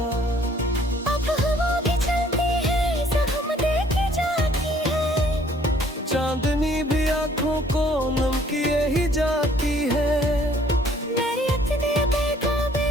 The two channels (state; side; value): normal; both; correlation 0.60